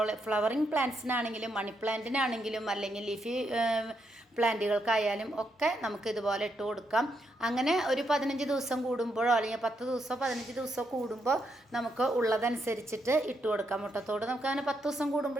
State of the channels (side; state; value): both; normal; correlation 0.79